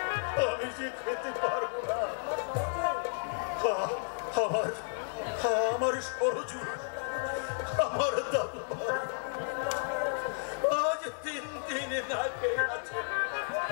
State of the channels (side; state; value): right; silent; digital silence